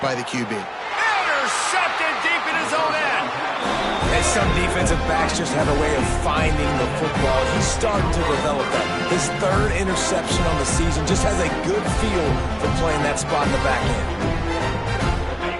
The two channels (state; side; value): identical; both; correlation 1.00